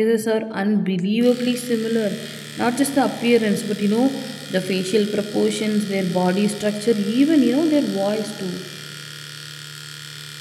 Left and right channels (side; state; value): both; identical; correlation 1.00